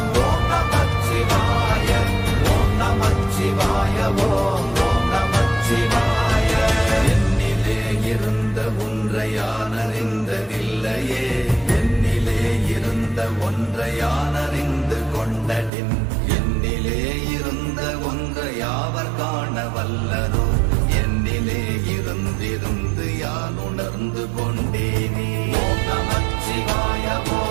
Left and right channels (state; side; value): drops out; left; at 15.7 s